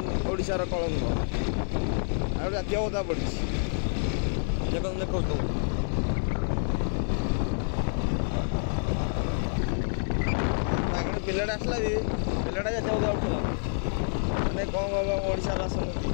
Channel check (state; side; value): silent; right; digital silence